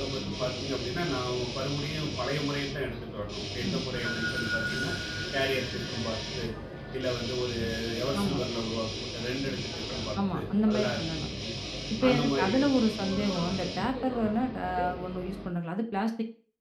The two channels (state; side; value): identical; both; correlation 1.00